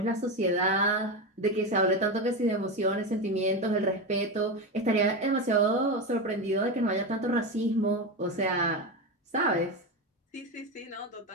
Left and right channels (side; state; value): both; normal; correlation 0.16